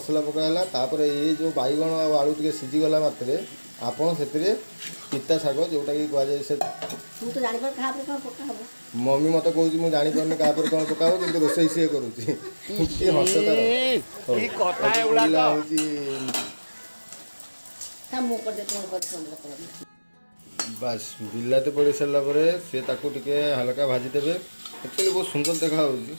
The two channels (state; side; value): inverted; both; correlation -1.00